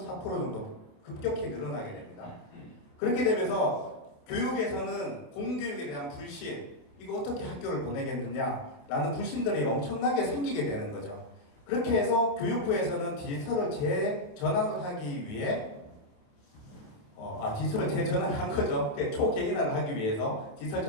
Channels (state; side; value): late; right; 28 ms